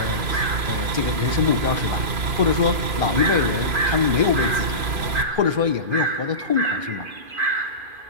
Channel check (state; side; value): late; left; 3.0 ms